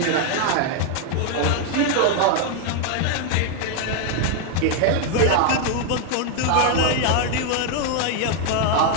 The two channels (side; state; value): both; different; correlation 0.01